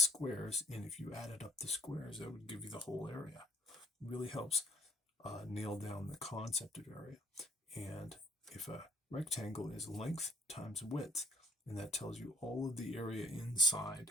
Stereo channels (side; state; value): both; normal; correlation 0.58